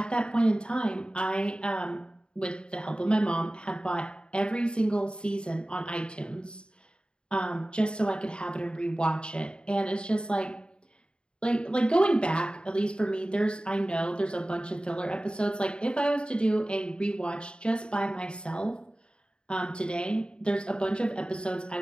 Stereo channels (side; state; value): right; late; 0.052 ms